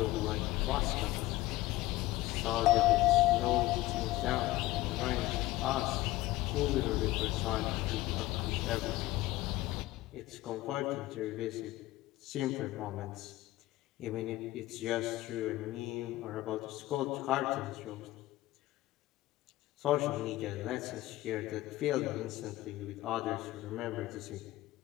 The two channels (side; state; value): right; quieter; 17.2 dB